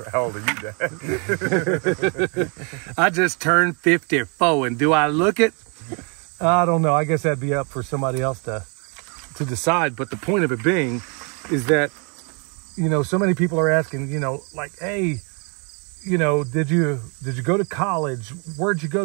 old are you, Dad? I just turned 54, and do I look it? I don't know. I guess that'd be up for somebody else to decide. But the point of it being is that, so many people are asking, like, hey, did you go to college? Where'd you go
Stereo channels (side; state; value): left; quieter; 35.2 dB